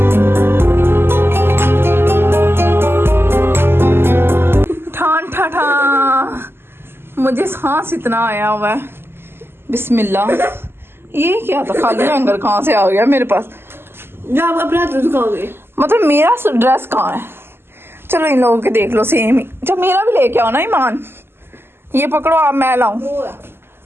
मुझे सांस इतना आया हुआ है। बिस्मिल्लाह। ये क्या था, खाली हैंगर कहाँ से आ गया मेरे पास? आप अपना दिखाओगे मतलब मेरा ड्रेस कहाँ है? चलो इन लोगों के देख लो सेम ही। जब मेरा भी लेके आओ ना ईमान, ये पकड़ो आप, मैं लाऊं,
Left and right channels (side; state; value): left; late; 0.11 ms